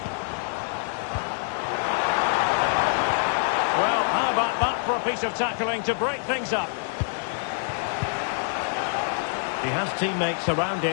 Well, how about that for a piece of tackling to break things up? He has teammates around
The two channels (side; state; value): right; silent; digital silence